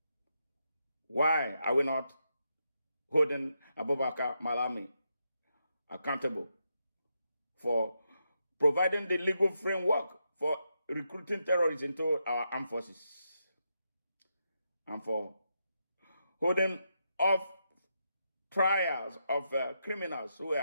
Why are we not holding Abubakar Malami accountable for providing the legal framework for recruiting terrorists into our armed forces and for holding off trials of criminals who were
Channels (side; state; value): both; inverted; correlation -0.83